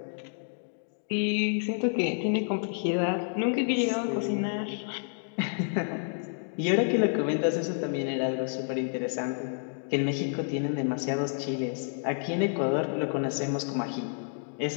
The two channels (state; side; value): silent; right; 58 dB below the other